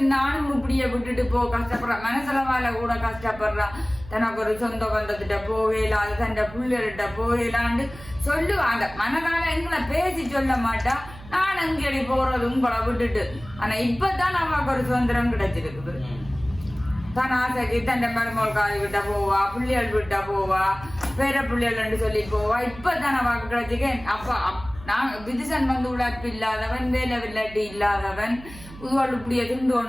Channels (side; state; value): right; noise; hum, 17 dB below the sound